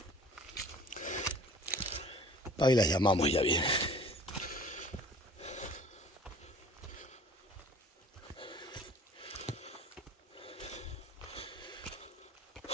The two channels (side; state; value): both; normal; correlation 0.47